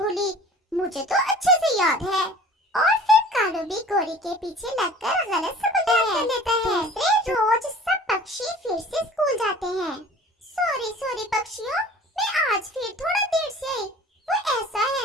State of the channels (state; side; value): normal; both; correlation 0.45